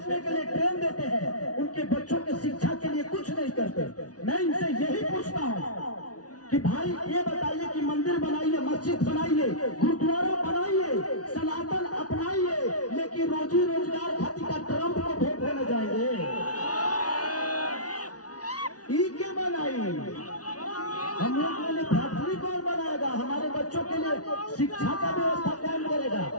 के लिए ट्रेन देते हैं, उनके बच्चों की शिक्षा के लिए कुछ नहीं करते। मैं इनसे यही पूछता हूँ कि भाई ये बताइए कि मंदिर बनाइए, मस्जिद बनाइए, गुरुद्वारा बनाइए, सनातन अपनाइए, लेकिन रोजी रोजगार खातिर का ट्रंप को वोट देने जाएंगे? ई के बनाइए, हम लोग के लिए फैक्ट्री कौन बनाएगा? हमारे बच्चों के लिए शिक्षा का व्यवस्था कौन करेगा?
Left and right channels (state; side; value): late; right; 0.68 ms